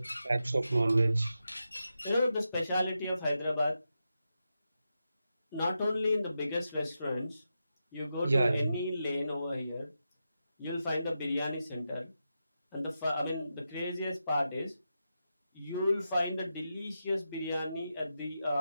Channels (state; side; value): inverted; both; correlation -0.88